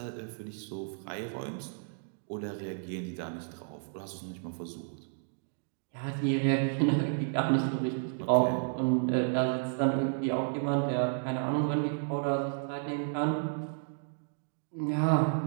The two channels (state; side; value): silent; left; digital silence